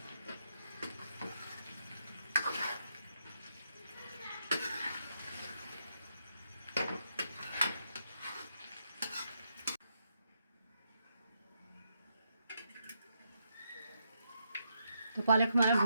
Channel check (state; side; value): inverted; both; correlation -0.80